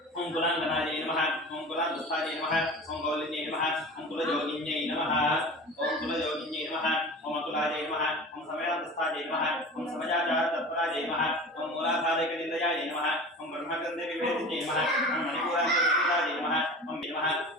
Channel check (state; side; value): normal; both; correlation 0.36